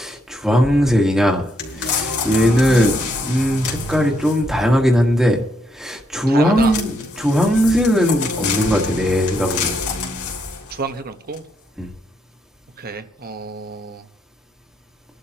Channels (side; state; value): both; normal; correlation 0.77